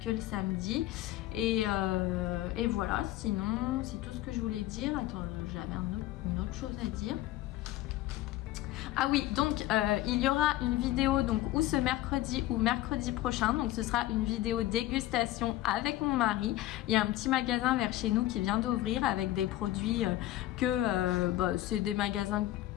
que le samedi. Et voilà, sinon c'est tout ce que je voulais dire. Attends, j'avais une autre chose à dire. Ah oui, donc il y aura une vidéo donc ou ce mercredi ou mercredi prochain. Donc ce sera une vidéo dégustation avec mon mari. Il y a un petit magasin vers chez nous qui vient d'ouvrir avec des produits c'est des magasins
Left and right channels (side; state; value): right; quieter; 15.4 dB